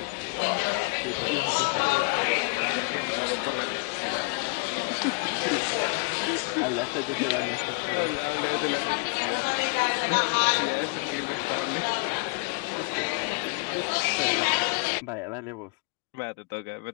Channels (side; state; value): right; quieter; 33.1 dB